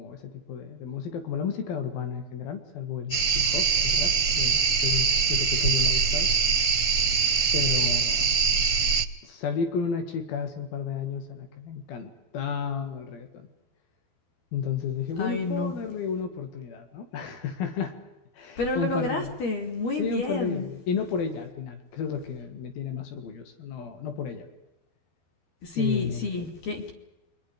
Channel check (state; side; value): late; right; 12 ms